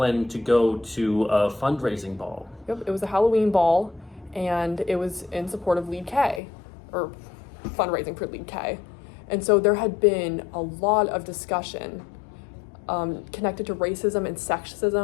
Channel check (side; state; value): right; drops out; at 6.4 s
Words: to go to a fundraising ball. Yep, it was a Halloween ball, and it was in support of Lead K, or fundraising for Lead K. And so there had been a lot of discussion connected to racism and